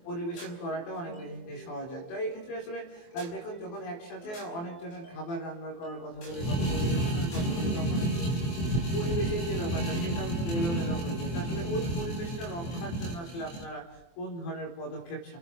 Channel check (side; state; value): right; late; 23 ms